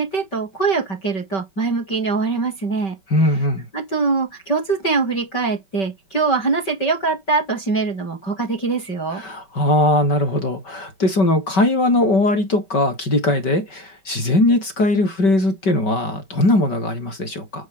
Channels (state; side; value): late; right; 5.2 ms